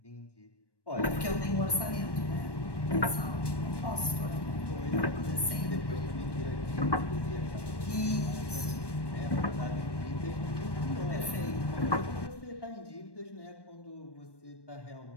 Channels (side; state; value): right; late; 1.1 ms